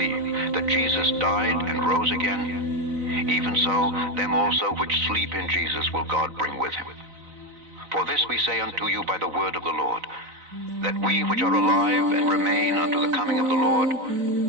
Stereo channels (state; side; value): late; left; 4.0 ms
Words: that Jesus died and rose again, even so them also which sleep in Jesus will God bring with him. For this we say unto you by the word of the Lord, that we which are alive and remain unto the coming of the Lord